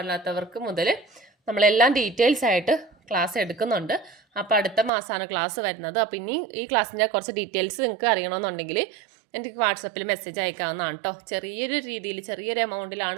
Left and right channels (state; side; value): drops out; left; at 4.9 s